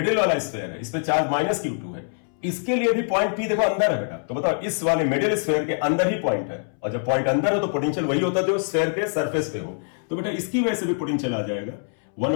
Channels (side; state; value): right; silent; 62 dB below the other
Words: वाला स्फेयर है, इस पे चार्ज माइनस Q2 है, इसके लिए भी पॉइंट P देखो अंदर है बेटा, तो बताओ इस वाले मिडिल स्फेयर के अंदर ही पॉइंट है, और जब पॉइंट अंदर हो तो पोटेंशियल वही होता है जो स्फेयर के सरफेस पे हो, तो बेटा इसकी वजह से भी पोटेंशियल आ जाएगा